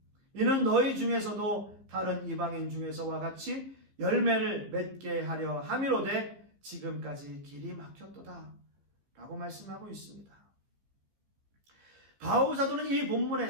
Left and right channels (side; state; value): left; late; 15 ms